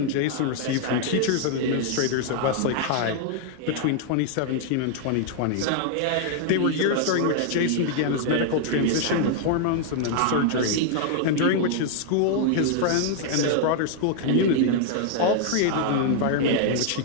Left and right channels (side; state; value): both; different; correlation 0.00